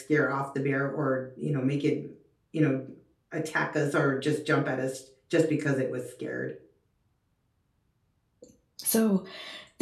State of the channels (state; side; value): identical; both; correlation 1.00